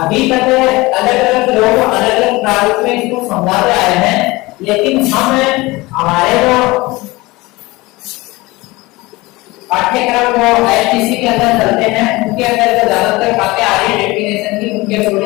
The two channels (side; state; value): right; quieter; 21.6 dB